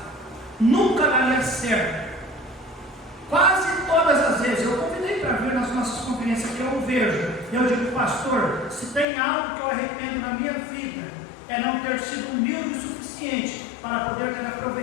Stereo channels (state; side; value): drops out; right; at 9.1 s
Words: nunca daria certo. Quase todas as vezes eu convidei para vir nas nossas conferências que eu vejo, eu digo: pastor, se tem algo que eu arrependo na minha vida, é não ter sido humilde o suficiente para poder ter